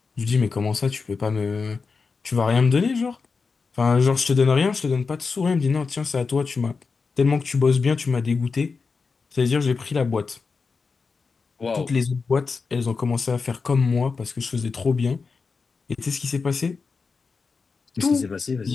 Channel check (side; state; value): right; quieter; 4.7 dB